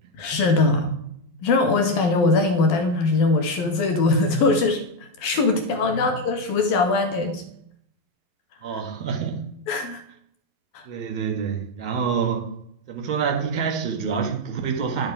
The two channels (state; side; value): late; right; 12 ms